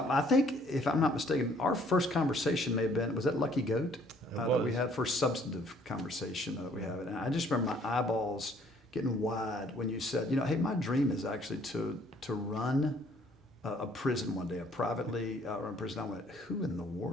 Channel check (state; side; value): normal; both; correlation 0.61